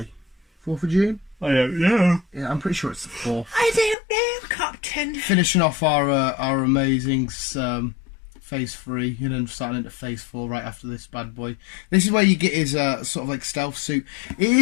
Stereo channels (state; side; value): drops out; right; at 4.0 s